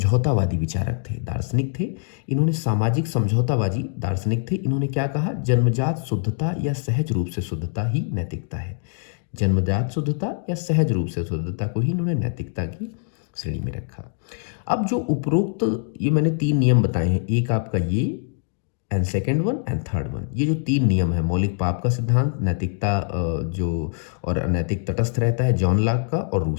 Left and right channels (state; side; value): silent; right; 63 dB below the other